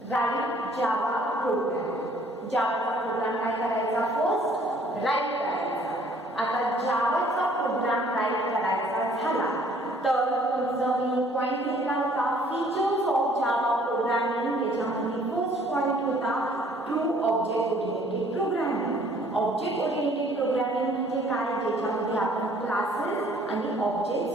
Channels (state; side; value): normal; both; correlation 0.58